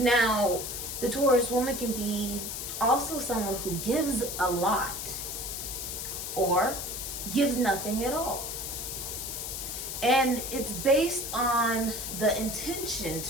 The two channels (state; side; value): noise; left; hiss, 5 dB below the sound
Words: The Taurus woman can be also someone who gives a lot or gives nothing at all. And it's based on the intention